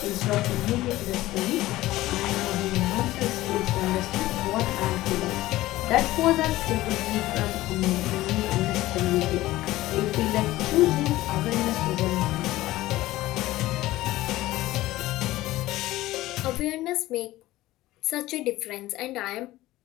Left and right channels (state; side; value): quieter; right; 16.8 dB